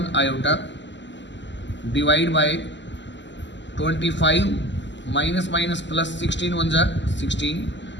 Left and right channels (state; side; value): late; right; 0.53 ms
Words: iota, divide by 25 minus minus plus 16 1 जा 16,